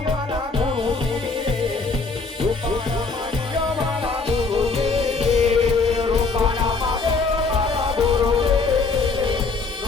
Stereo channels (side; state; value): right; quieter; 4.2 dB